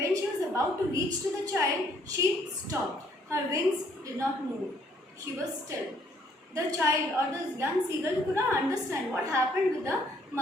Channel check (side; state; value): both; normal; correlation 0.65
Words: she was about to reach to the child, she stopped. Her wings did not move. She was still. The child or the young seagull could not understand what happened with the